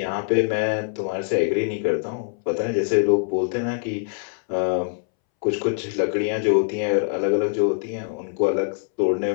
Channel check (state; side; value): silent; right; 63 dB below the other